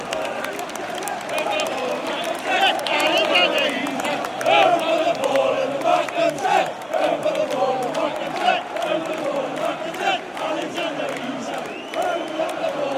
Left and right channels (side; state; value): both; identical; correlation 1.00